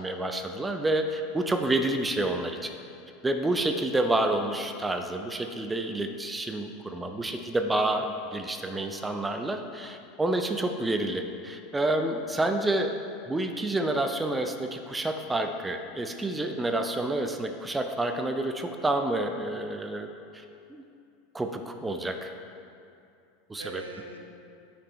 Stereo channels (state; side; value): normal; both; correlation 0.68